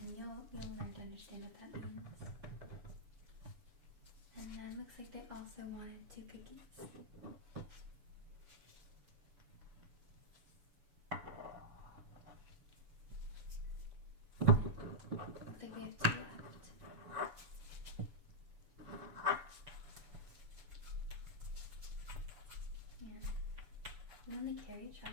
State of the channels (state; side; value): late; left; 7.0 ms